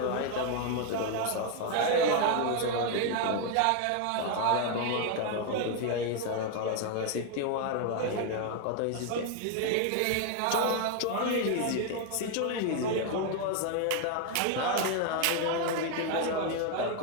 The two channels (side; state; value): both; different; correlation 0.00